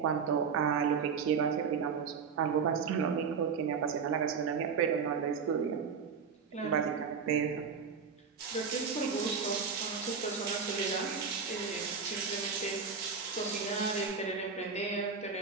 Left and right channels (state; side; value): quieter; left; 5.9 dB